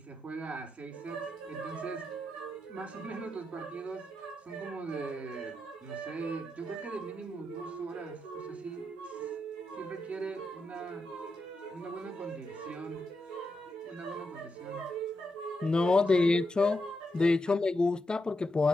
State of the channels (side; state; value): both; normal; correlation 0.85